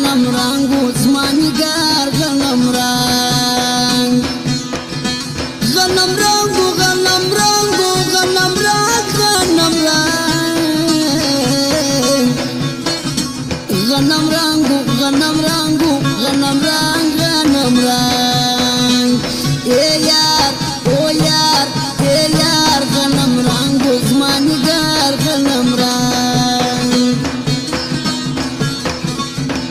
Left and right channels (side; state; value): both; identical; correlation 1.00